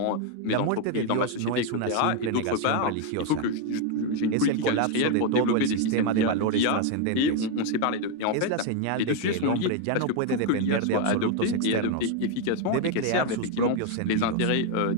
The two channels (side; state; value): both; different; correlation 0.01